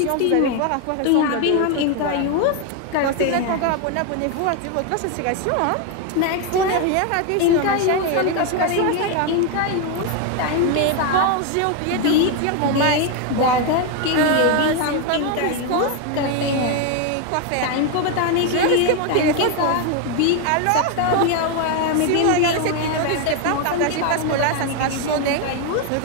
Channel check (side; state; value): both; different; correlation 0.01